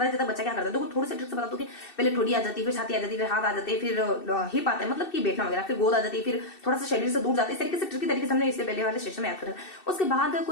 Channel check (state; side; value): late; right; 2.7 ms